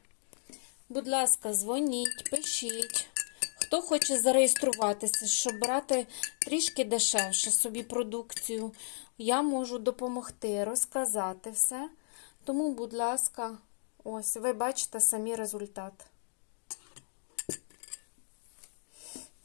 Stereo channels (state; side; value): silent; right; digital silence